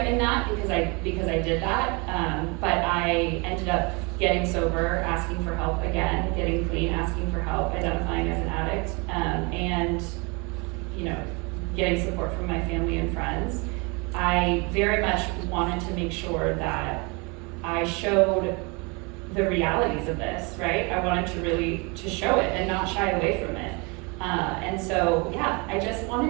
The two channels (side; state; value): left; quieter; 29.6 dB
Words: in that because I did that, but I ended up getting sober, asking for help again, getting clean, asking for help, identifying as an addict, and you know, getting support from my family and friends. I very much wanted to make sure that I showed the realities of this, right? I wanted to show it and not shy away from it. And so, yeah, I just